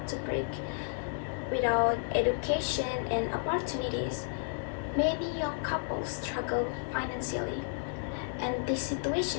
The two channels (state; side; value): silent; right; digital silence